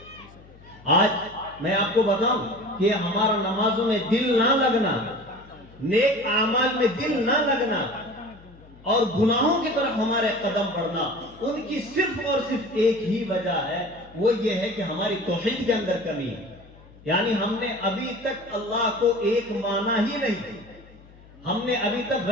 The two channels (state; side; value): noise; left; hum, 23 dB below the sound